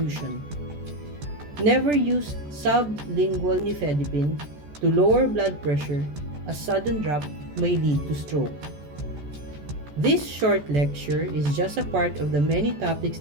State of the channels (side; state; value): left; late; 14 ms